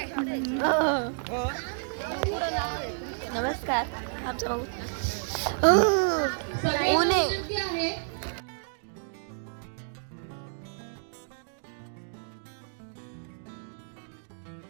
नमस्कार. आमचा भाऊ ऊने.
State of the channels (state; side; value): silent; left; digital silence